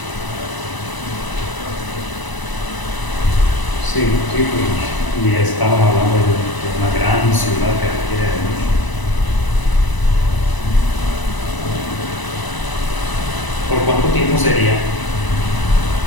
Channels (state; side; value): late; right; 1.0 ms